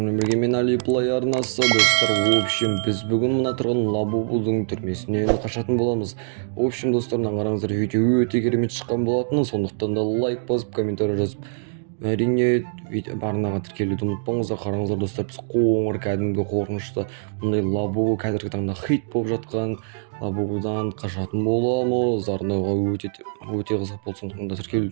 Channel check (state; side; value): silent; left; digital silence